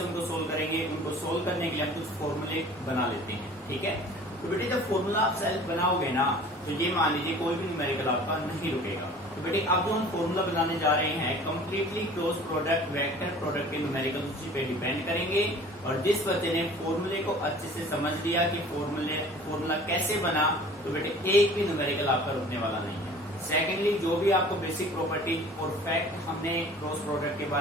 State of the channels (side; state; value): both; normal; correlation 0.46